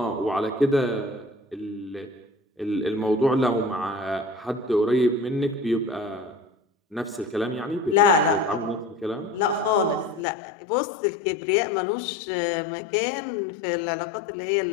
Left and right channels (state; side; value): drops out; right; at 10.2 s